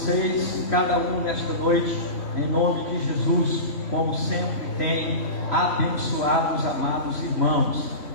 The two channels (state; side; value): late; right; 3.0 ms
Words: de cada um nesta noite, em nome de Jesus, como sempre tem abençoado os amados irmãos.